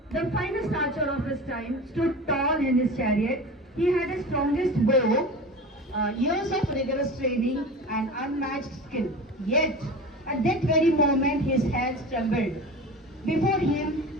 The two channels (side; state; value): both; normal; correlation 0.32